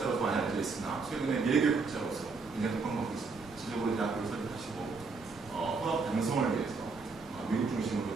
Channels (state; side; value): quieter; left; 4.4 dB